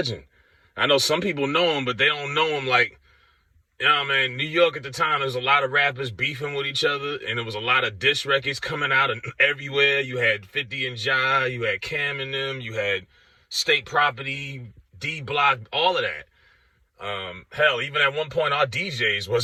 I know some people know him, but they don't know him like, man, New York at the time, there was a lot of rappers beefing with each other, and there was a lot of diss records coming out and everywhere. You had 50 and Ja, you had Cam and them, you had State Property, D Block, all of that. Hell, even at one point, our DJs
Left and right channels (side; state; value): both; identical; correlation 1.00